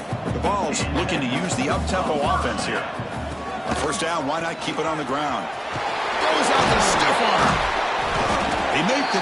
The Vols looking to use the up-tempo offense here. On 1st down, why not keep it on the ground? Goes out the stiff arm. They make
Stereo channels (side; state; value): both; identical; correlation 1.00